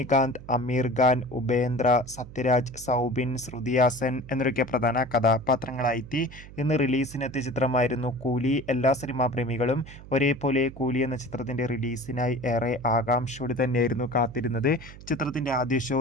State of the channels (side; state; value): right; noise; hum, 17 dB below the sound